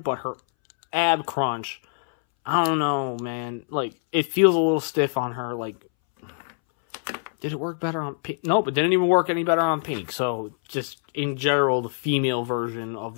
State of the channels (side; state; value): right; silent; 62 dB below the other